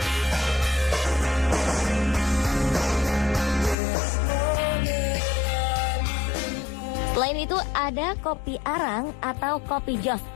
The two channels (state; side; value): drops out; right; at 3.8 s